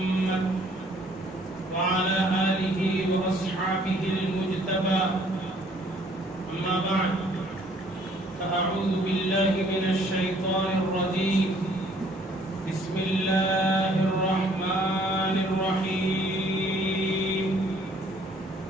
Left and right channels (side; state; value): both; normal; correlation 0.60